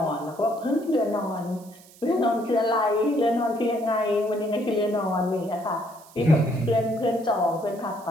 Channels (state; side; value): noise; right; hiss, 24 dB below the sound